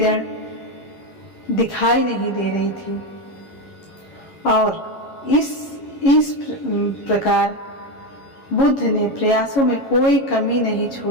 दिखाई नहीं दे रही थी और इस प्रकार बुद्ध ने प्रयासों में कोई कमी नहीं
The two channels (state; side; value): late; right; 11 ms